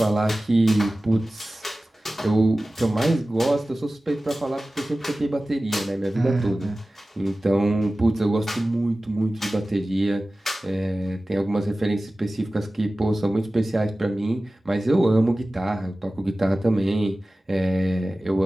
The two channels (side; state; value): both; normal; correlation 0.96